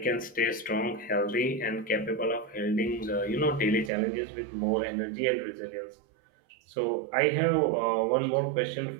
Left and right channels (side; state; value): left; drops out; at 3.9 s